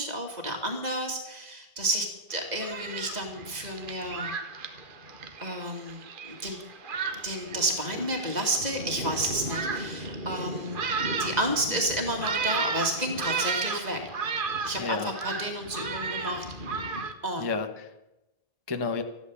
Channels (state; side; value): late; left; 2.0 ms